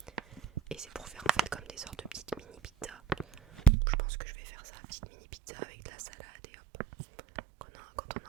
Et c'est pour faire en fait comme des sortes de petites mini pizzas. Je pense que je vais faire ça, petite mini pizza avec de la salade et hop. Quand on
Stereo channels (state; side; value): drops out; left; at 3.7 s